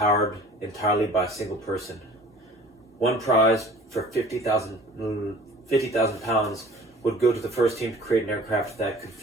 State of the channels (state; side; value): normal; both; correlation 0.47